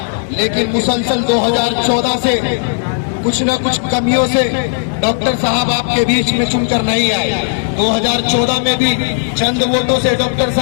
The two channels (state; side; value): silent; right; digital silence